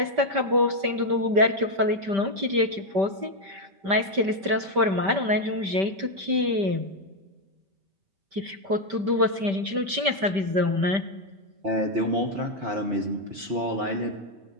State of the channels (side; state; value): left; late; 5.1 ms